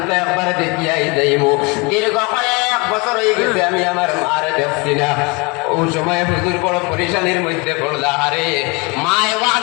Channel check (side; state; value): right; quieter; 28.3 dB